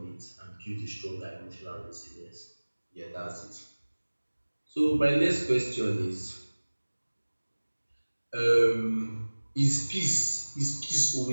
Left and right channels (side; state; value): both; inverted; correlation -1.00